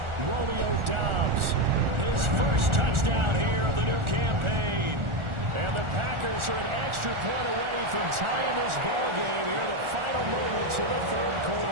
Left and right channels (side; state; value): left; late; 1.4 ms